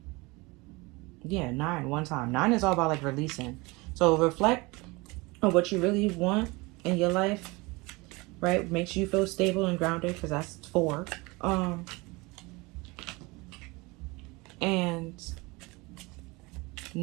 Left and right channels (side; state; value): left; quieter; 24.7 dB